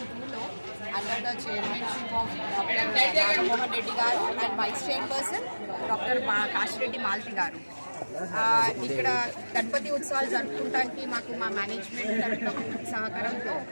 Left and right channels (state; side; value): inverted; both; correlation -1.00